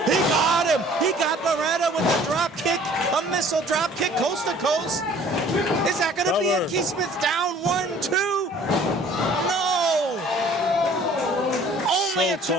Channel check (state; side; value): normal; both; correlation 0.52